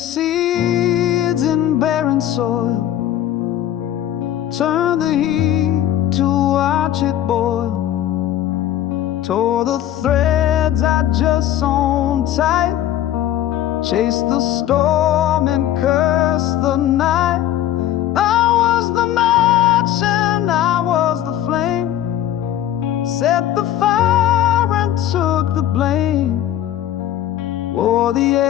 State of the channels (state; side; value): quieter; right; 11.9 dB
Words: in barren soil, turned the heat to watch it boil, tore the threads I just sewn tight, chased the storm and cursed the night. I was the match and I was the flame, set the fire Wore the